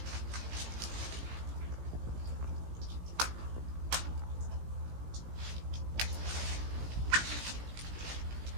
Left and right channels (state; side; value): late; left; 17 ms